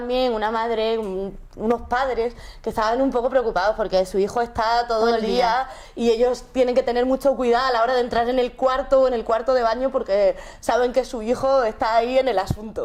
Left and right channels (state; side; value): identical; both; correlation 1.00